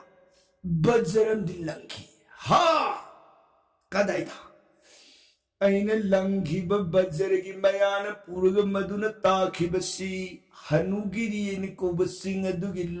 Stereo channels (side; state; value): both; identical; correlation 1.00